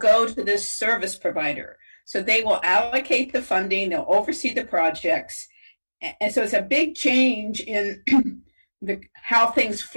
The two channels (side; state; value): both; inverted; correlation -1.00